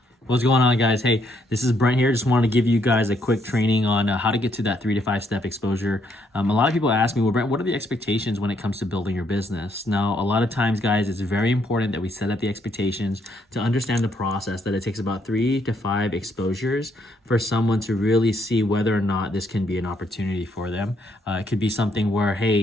What's going on, guys? Hey, this is Brent here. Just wanted to give you guys a quick training on how to get to that 3 to 5 step exposure. A lot of people ask me, well, Brent, what are the expectations when it comes to building your business? Now, a lot of times, guys, it's very important that we set up the expectations to understand the process, that it takes about 3 to 5 exposures for someone to really see whether or not this can be an opportunity for them. It could be something where, hey,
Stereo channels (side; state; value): both; normal; correlation 0.72